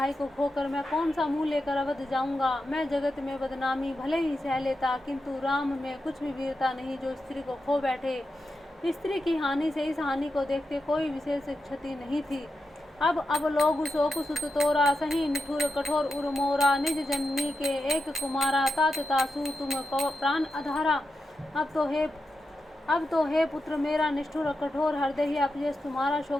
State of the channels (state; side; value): normal; both; correlation 0.88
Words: को खोकर मैं कौन सा मुंह लेकर अवध जाऊंगा। मैं जगत में बदनामी भले ही सह लेता, किंतु राम में कुछ भी वीरता नहीं जो स्त्री को खो बैठे। स्त्री की हानि से इस हानि को देखते कोई विशेष क्षति नहीं थी। अब लोग शोक सुत तोरा, सही निठुर कठोर उर मोरा, निज जननी के एक कुमारा, तात तासु तुम प्राण अधारा। अब तो हे पुत्र मेरा निष्ठुर और कठोर हृदय ही अपजेश तुम्हारा